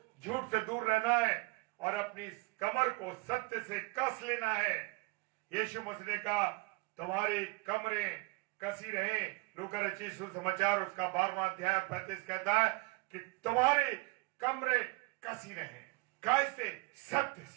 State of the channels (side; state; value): left; quieter; 26.7 dB